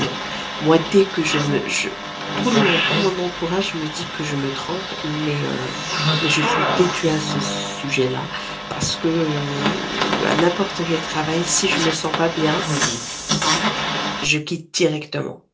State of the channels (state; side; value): identical; both; correlation 1.00